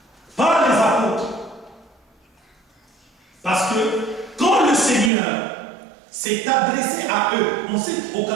par les apôtres. Parce que quand le Seigneur s'est adressé à eux, en cette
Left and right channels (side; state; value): left; drops out; at 5.1 s